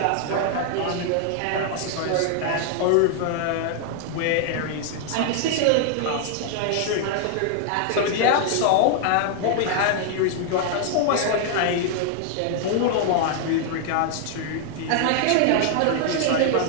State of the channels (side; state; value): both; different; correlation 0.00